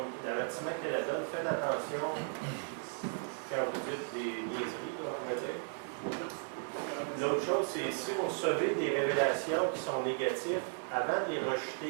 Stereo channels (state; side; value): silent; left; 54 dB below the other